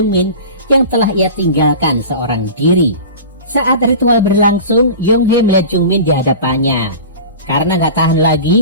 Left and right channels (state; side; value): inverted; both; correlation -0.35